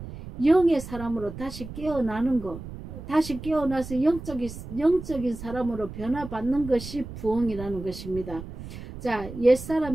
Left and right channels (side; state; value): right; noise; rumble, 12 dB below the sound